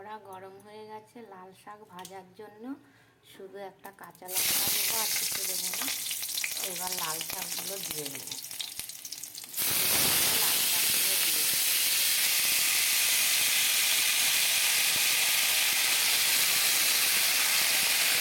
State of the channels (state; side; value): identical; both; correlation 1.00